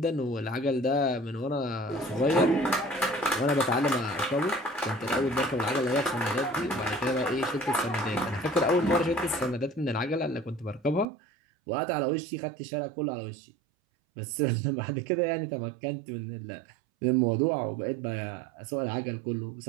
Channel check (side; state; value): left; drops out; at 11.1 s